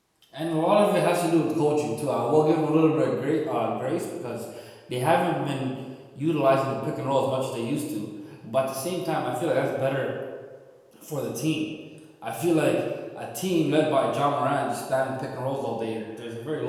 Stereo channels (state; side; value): identical; both; correlation 1.00